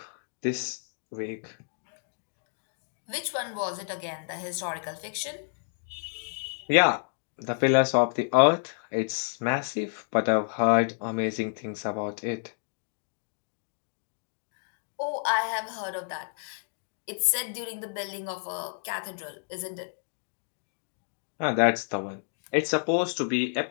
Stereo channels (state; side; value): silent; right; digital silence